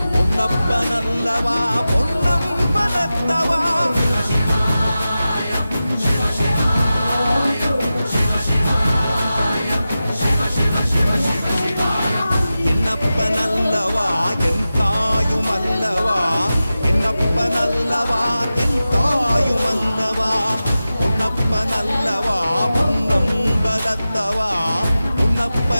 பொன்னப்பனல்லவா பொன்னம்பலத்தவா என்னப்பனல்லவா என் தாயுமல்லவா என்னப்பனல்லவா என் தாயுமல்லவா பொன்னப்பனல்லவா பொன்னம்பலத்தவா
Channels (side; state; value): both; inverted; correlation -0.94